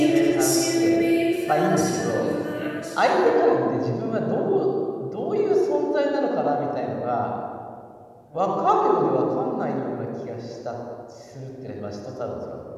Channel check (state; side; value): identical; both; correlation 1.00